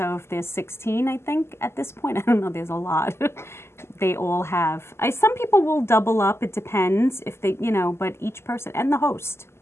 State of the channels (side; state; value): right; late; 0.12 ms